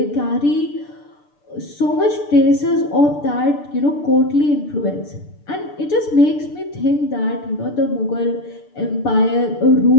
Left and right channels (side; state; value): right; late; 6.8 ms